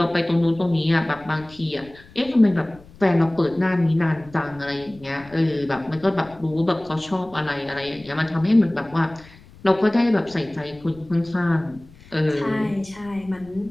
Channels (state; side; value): noise; left; rumble, 23 dB below the sound